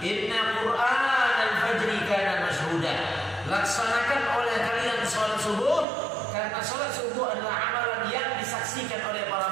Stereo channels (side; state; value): left; drops out; at 5.9 s